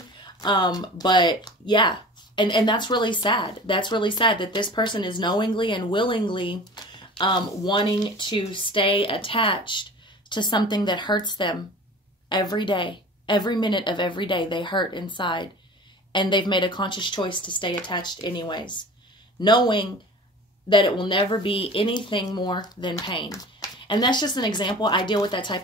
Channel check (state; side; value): normal; both; correlation 0.40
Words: But yeah, and that's really sad. That's really sad that this person is knowingly and willingly wanting to stay attached to something that hurts them every day. Every minute of every day they hurt inside. And they've made a conscious choice to stay attached anyways, knowing that it will never be anything more than pain. And that's just an example. I deal with that type